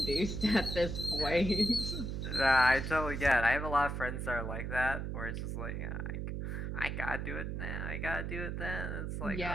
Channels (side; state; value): right; noise; hum, 3 dB below the sound